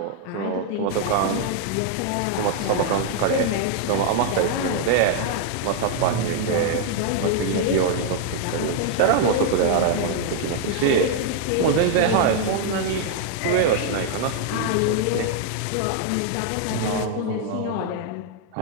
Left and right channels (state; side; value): different; both; correlation 0.00